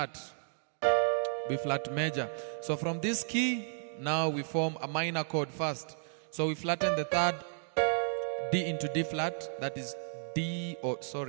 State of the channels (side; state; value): left; silent; digital silence